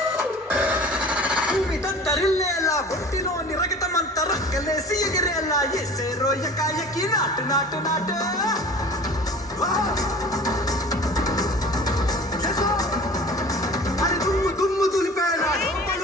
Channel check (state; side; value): normal; both; correlation 0.42